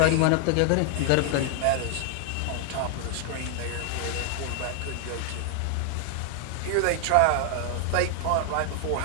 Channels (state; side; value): different; both; correlation 0.00